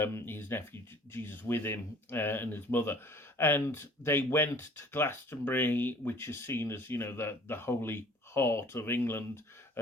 nephew Jesus with him and his mother, and they went to Glastonbury, which is seen as the holy heart of England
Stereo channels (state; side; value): normal; both; correlation 0.52